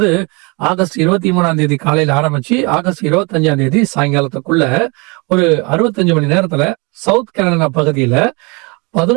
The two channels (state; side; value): quieter; left; 28.9 dB